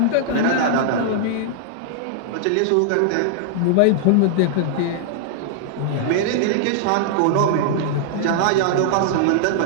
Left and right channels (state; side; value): different; both; correlation -0.01